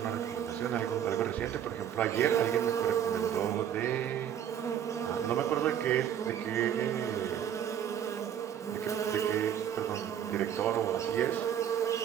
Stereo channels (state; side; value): quieter; left; 9.6 dB